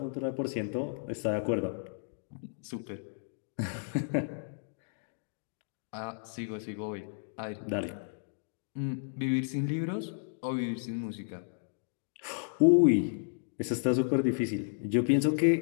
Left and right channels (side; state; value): right; silent; digital silence